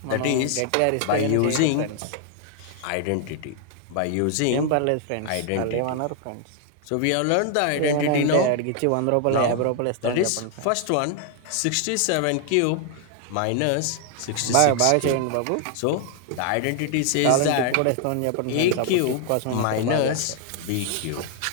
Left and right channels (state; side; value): different; both; correlation 0.00